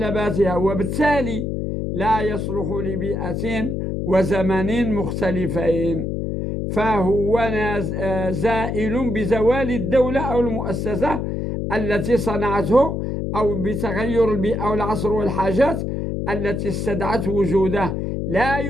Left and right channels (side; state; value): left; noise; hum, 2 dB below the sound